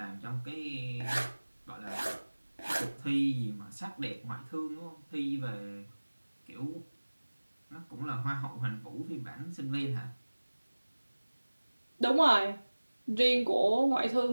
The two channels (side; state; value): both; inverted; correlation -1.00